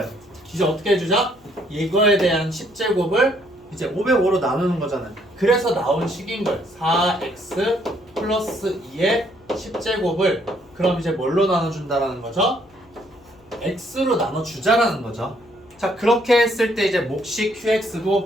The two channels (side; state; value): left; noise; hum, 29 dB below the sound